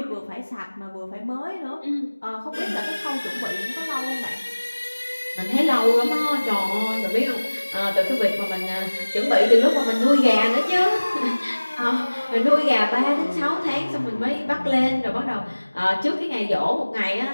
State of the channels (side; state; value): both; inverted; correlation -1.00